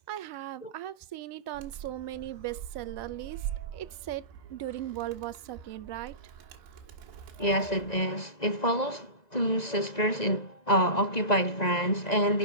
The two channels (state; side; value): late; right; 1.9 ms